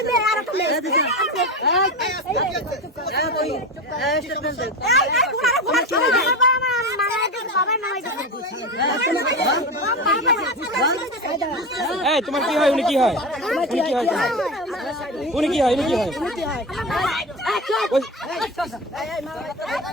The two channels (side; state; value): both; normal; correlation 0.23